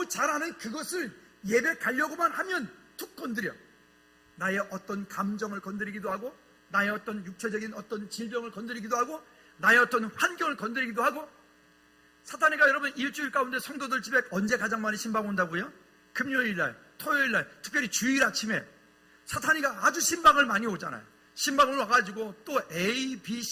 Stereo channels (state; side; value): identical; both; correlation 1.00